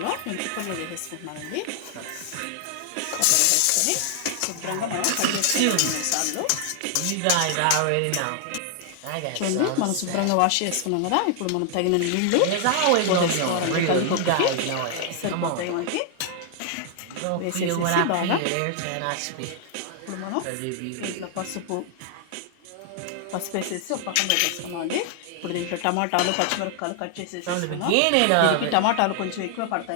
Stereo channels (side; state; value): both; different; correlation 0.00